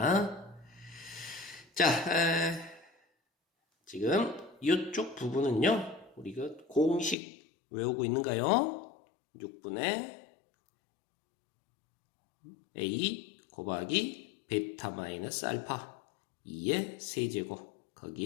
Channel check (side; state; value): right; drops out; at 7.2 s